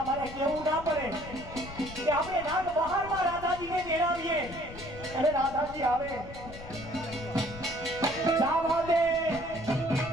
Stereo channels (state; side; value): noise; left; rumble, 13 dB below the sound